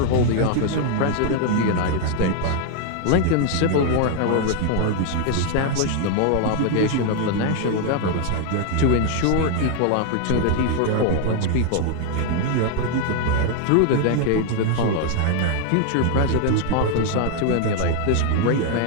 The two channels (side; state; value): both; different; correlation 0.00